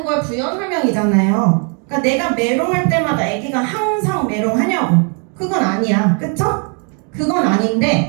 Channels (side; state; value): left; quieter; 39.0 dB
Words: 걸 부연 설명이잖아요. 그러니까 내가 메롱할 때마다 아기가 항상 메롱하냐고. 그건 아니야. 그쵸? 그건